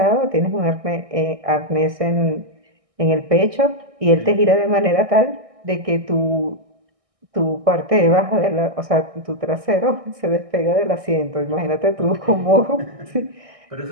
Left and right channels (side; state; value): left; late; 1.6 ms